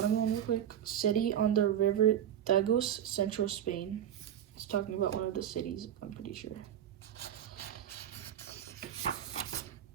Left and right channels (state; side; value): quieter; left; 10.2 dB